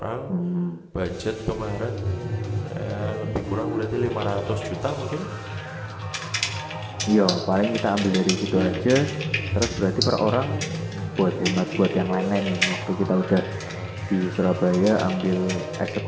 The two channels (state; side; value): identical; both; correlation 1.00